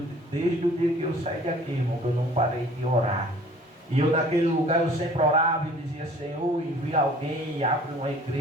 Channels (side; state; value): both; normal; correlation 0.51